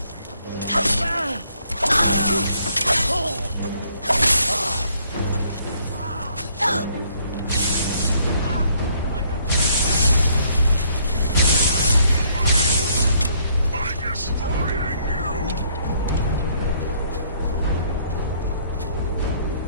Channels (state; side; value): inverted; both; correlation -0.65